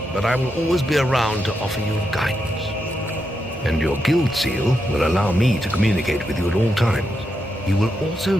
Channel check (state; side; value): normal; both; correlation 0.84